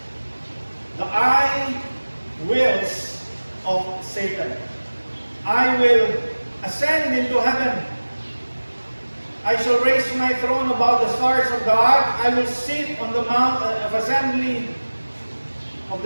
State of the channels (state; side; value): inverted; both; correlation -1.00